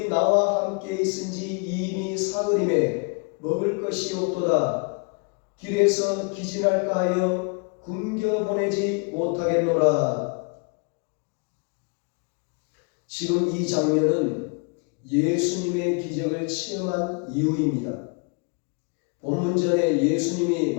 나와 함께 있은지 이미 사흘임에 먹을 것이 없도다. 길에서 기진할까 하여 굶겨 보내지 못하겠노라. 지금 이 장면은 예수님의 기적을 체험한 이후입니다. 본문전에 예수님이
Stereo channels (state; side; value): quieter; right; 34.4 dB